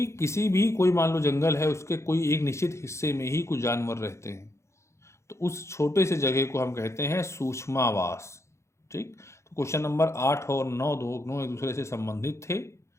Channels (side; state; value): right; late; 0.14 ms